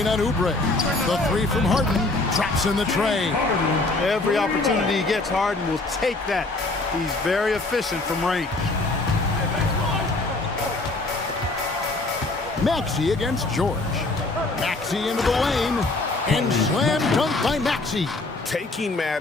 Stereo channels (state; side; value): quieter; right; 3.1 dB